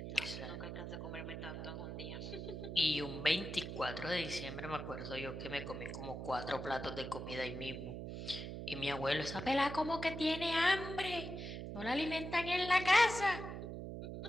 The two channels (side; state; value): right; noise; hum, 6 dB below the sound